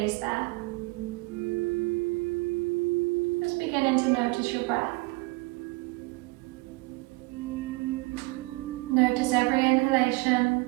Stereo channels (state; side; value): quieter; left; 24.5 dB